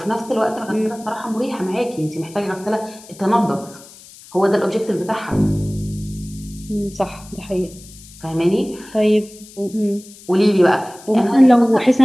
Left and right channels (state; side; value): noise; left; hiss, 20 dB below the sound